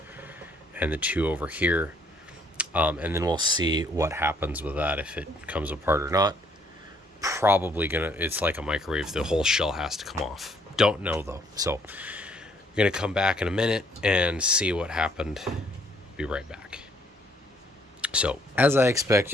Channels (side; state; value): both; normal; correlation 0.65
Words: and the 2 over here, and then we'll see what happens with that, if it comes apart or not. Probably gonna, it's like a microwave, the whole shell has to come off. Don't know though, so I'm gonna come back in a minute and see what happened. Be right back. So as I